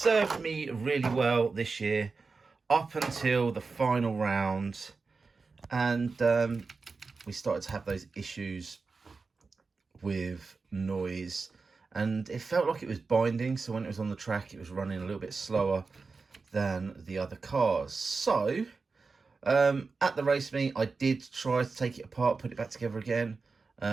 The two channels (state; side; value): quieter; left; 4.4 dB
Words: me really well this year up until the final round, and we started to have those issues with noise, and it felt like it was binding. So when it was on the track, it was running a little bit slower than the other cars. So at the race meet, I did try to take it apart, put it back together again,